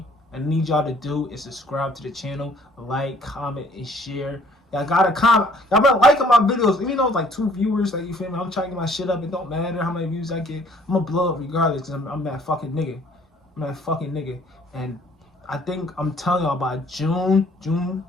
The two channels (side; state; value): both; normal; correlation 0.59